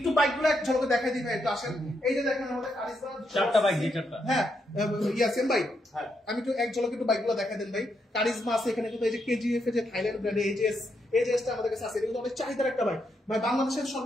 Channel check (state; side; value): normal; both; correlation 0.80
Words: বাইকগুলো এক ঝলকে দেখাই দিই ভাই, একটু আসেন। এই যে দেখেন আমাদের কারিজমা 4টা বাইক, 4টা। হ্যাঁ ইয়াসিন ভাই, আমি একটু এক ঝলকে একটু বাইকগুলো দেখাই দেন ভাই। কারিজমা আছে এখানে, কিন্তু এই যে কেজিএফ এর যে থাইল্যান্ড ব্র্যান্ডের এজেসটা আমাদের কাছে আছে, এটা কিন্তু অনেক চাহিদার একটা বাইক ভাই। বাংলাদেশের